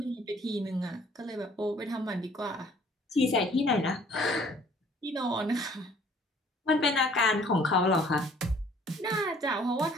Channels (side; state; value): both; normal; correlation 0.57